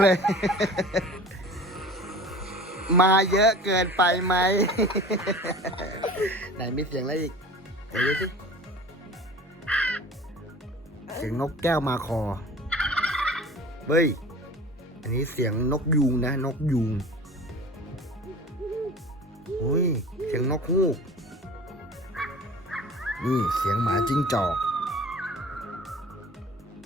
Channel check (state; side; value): normal; both; correlation 0.41